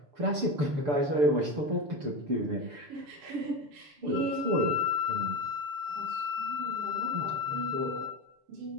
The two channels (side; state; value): left; late; 6.8 ms